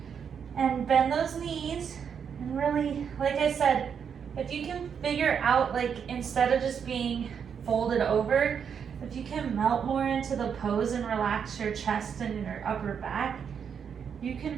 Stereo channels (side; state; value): left; quieter; 7.3 dB